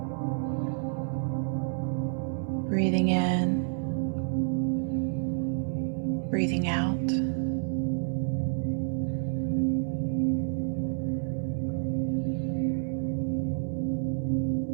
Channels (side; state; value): left; silent; 58 dB below the other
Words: Breathing in, breathing out.